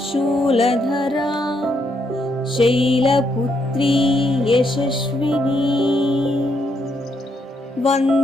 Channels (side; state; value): both; normal; correlation 0.76